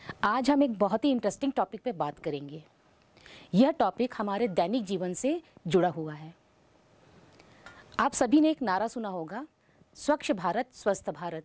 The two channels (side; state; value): both; identical; correlation 1.00